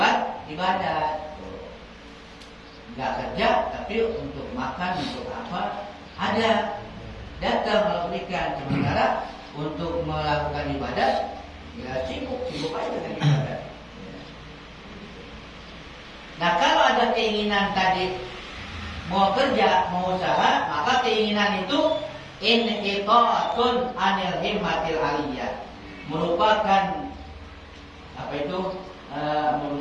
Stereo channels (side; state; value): both; identical; correlation 1.00